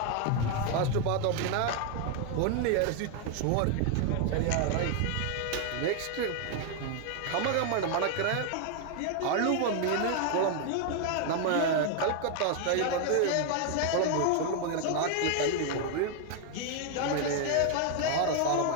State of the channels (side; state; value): both; different; correlation 0.01